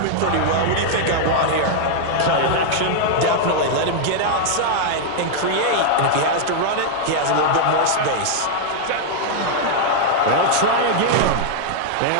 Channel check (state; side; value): different; both; correlation -0.01